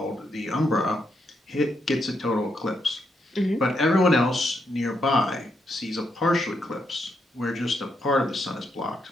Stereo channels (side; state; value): both; normal; correlation 0.80